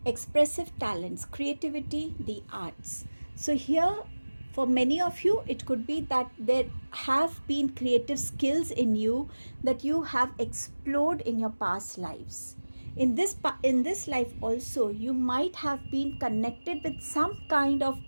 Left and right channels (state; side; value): inverted; both; correlation -1.00